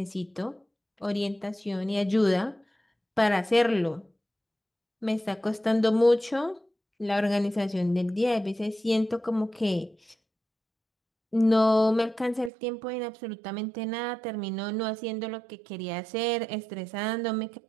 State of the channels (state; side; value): drops out; left; at 12.5 s